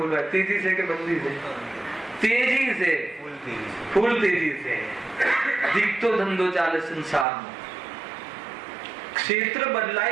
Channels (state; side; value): drops out; left; at 7.2 s